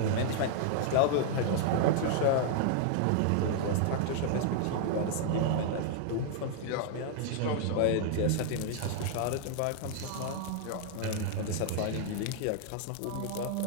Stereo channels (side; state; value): both; different; correlation -0.01